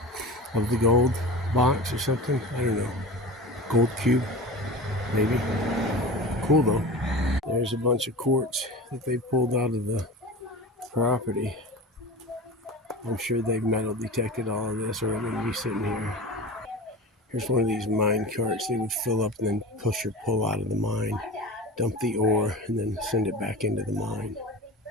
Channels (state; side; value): normal; both; correlation 0.32